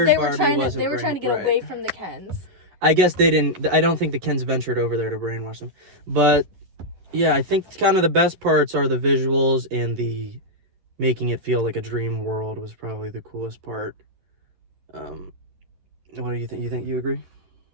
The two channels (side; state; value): left; late; 11 ms